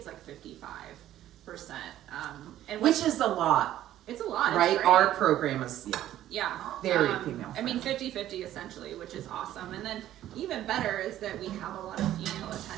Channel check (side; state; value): left; quieter; 12.8 dB